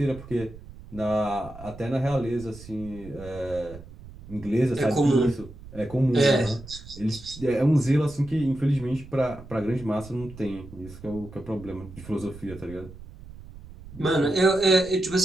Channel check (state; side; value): noise; right; rumble, 16 dB below the sound